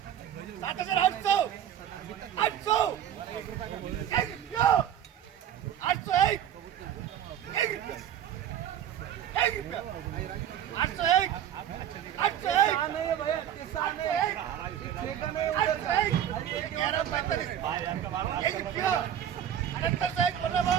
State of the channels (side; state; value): left; quieter; 10.3 dB